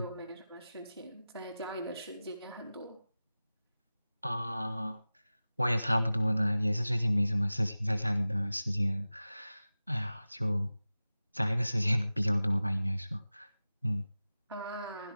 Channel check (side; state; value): both; inverted; correlation -0.96